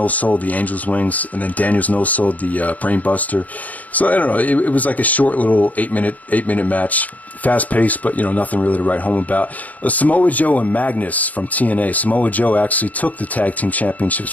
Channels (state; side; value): late; right; 0.074 ms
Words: the Angel's Wings, and then Daniels no-sold the Brainbuster. So, I don't know, it was like a short little 8-minute match. Fast-paced, but, nothing really to write home about. Samoa Joe and Magnus from TNA. Samoa Joe actually took the tag team championships